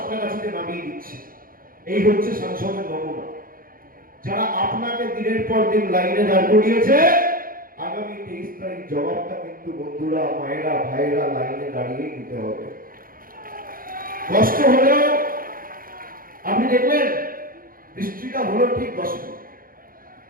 নামিয়ে দিচ্ছে। এই হচ্ছে সাংসদের নমুনা। যারা আপনাকে দিনের পর দিন লাইনে দাঁড় করিয়েছে, আগামী 23 তারিখ জবাবটা কিন্তু বন্ধুরা, মায়েরা, ভাইয়েরা লাইনে দাঁড়িয়ে দিতে হবে। কষ্ট হলেও আপনি দেখলেন বৃষ্টিটা হলো ঠিক 10 মিনিট,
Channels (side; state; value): left; late; 0.41 ms